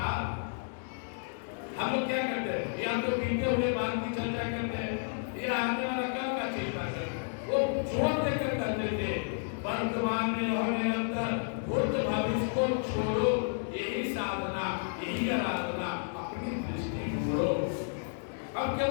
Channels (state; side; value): silent; right; 57 dB below the other